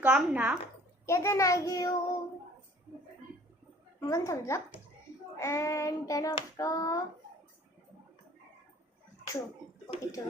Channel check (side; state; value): both; normal; correlation 0.52